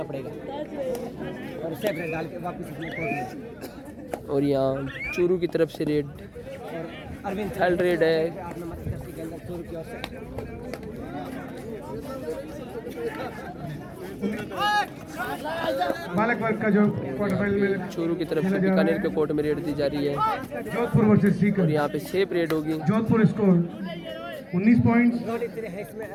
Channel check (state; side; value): identical; both; correlation 1.00